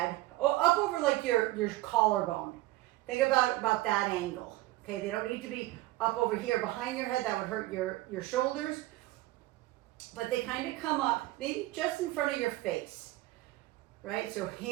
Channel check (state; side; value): quieter; left; 17.8 dB